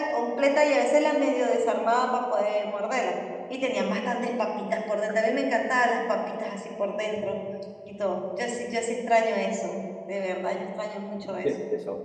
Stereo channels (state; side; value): identical; both; correlation 1.00